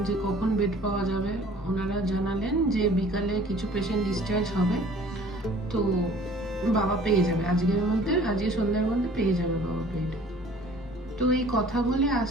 যে কখন বেড পাওয়া যাবে। ওনারা জানালেন যে বিকালে কিছু পেশেন্ট ডিসচার্জ হবে, তো বাবা পেয়ে যাবে আজকে সন্ধ্যার মধ্যে পেয়ে যাবে বাবা বেড। তো এই কথা বলে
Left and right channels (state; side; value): normal; both; correlation 0.50